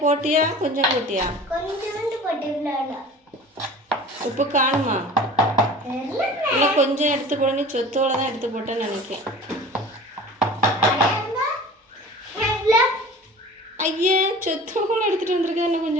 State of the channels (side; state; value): both; normal; correlation 0.40